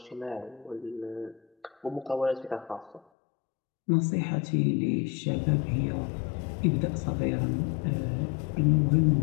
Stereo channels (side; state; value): right; drops out; at 3.0 s